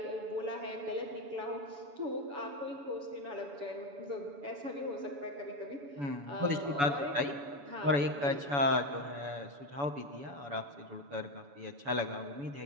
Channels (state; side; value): late; left; 7.0 ms